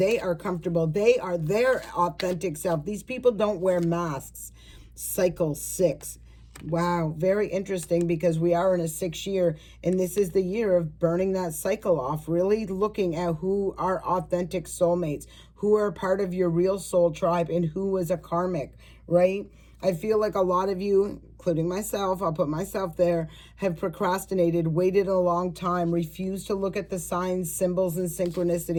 are comfortable. They are their authentic self. These people don't wear masks. Cycle 6. Wow, very interesting because we are in a 6th year and this is the year of burning that cycle off, really looking at who are authentic soulmates, who are part of your real soul tribe and who is a karmic, right? I feel like a lot of you, including myself, I'll put myself there, have procrastinated, waited a long time, refused to look at the signs, symbols, and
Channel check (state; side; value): identical; both; correlation 1.00